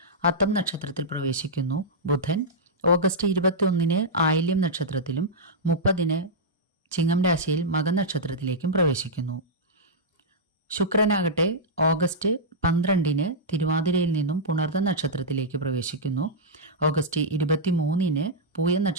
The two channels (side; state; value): both; normal; correlation -0.10